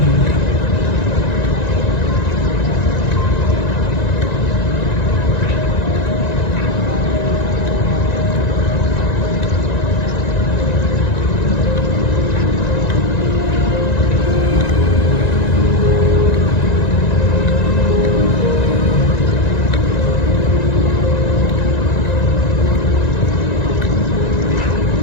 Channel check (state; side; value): late; right; 1.9 ms